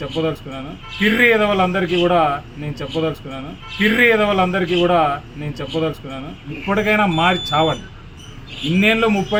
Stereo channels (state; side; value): identical; both; correlation 1.00